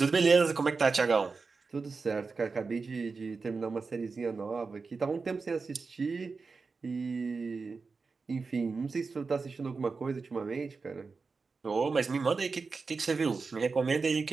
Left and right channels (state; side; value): quieter; left; 4.5 dB